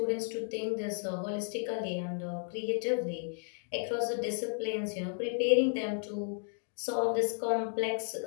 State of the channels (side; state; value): right; silent; 55 dB below the other